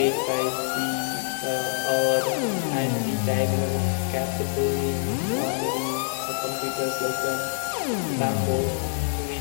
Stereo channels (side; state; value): right; silent; digital silence